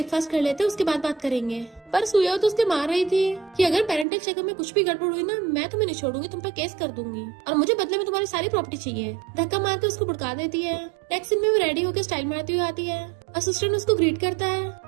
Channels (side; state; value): left; drops out; at 4.0 s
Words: कर लेते उसके बाद बात करेंगे। पर सुयो तो उसके मार रही थी कि अगर पेरेंटल चेकअप में कुछ भी गड़बड़ हुई ना, मैं तुम्हें नहीं छोड़ूंगी, तुम पर केस कर दूंगी और मुझे बदले में तुम्हारी सारी प्रॉपर्टी चाहिए। धक्का मार के उसको भड़का देती है। नेक्स्ट सीन में वो रेडी होकर स्टाइल मारती हुई आती है। असिस्टेंट उसको ग्रीट करता है।